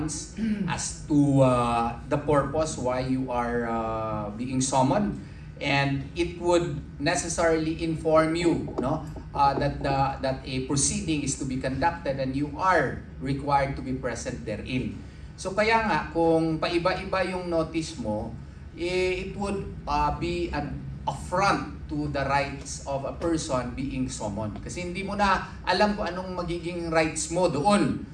as to the purpose why you are being summoned, and it would necessarily inform you, no, that a proceeding is to be conducted and you are required to be present therein. So kaya nga kung paiba-iba yung notice mo, it would be an affront to the rights of a person being summoned. Kasi hindi mo na alam kung anong magiging rights mo doon.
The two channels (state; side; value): identical; both; correlation 1.00